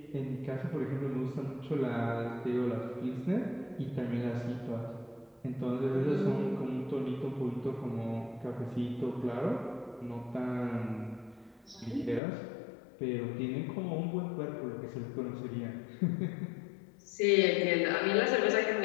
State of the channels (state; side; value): drops out; right; at 12.2 s